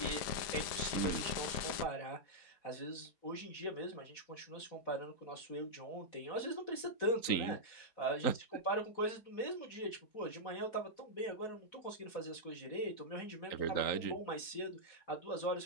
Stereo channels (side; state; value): right; late; 4.1 ms